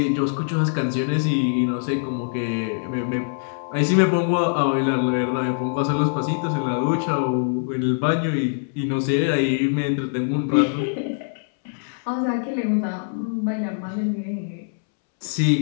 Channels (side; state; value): right; silent; 63 dB below the other